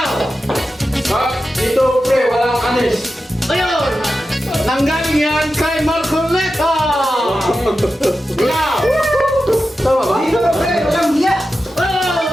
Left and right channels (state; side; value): normal; both; correlation 0.92